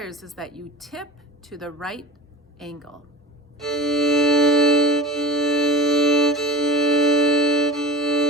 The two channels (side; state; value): both; normal; correlation 0.34